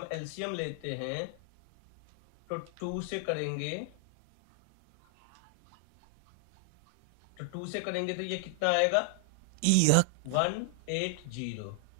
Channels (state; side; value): different; both; correlation 0.00